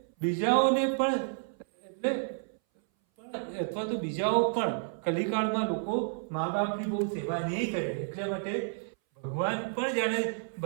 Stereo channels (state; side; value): silent; left; 57 dB below the other